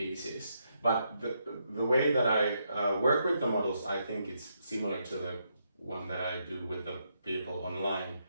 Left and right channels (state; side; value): inverted; both; correlation -0.79